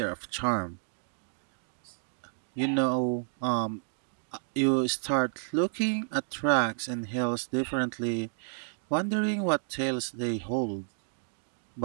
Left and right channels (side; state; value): left; silent; digital silence